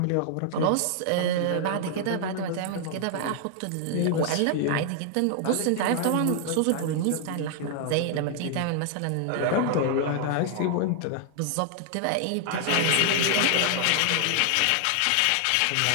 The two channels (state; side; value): different; both; correlation 0.00